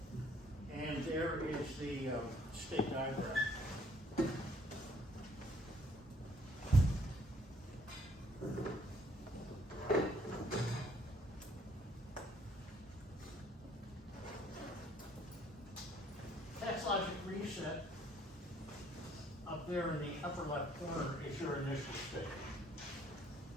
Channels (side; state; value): both; normal; correlation 0.63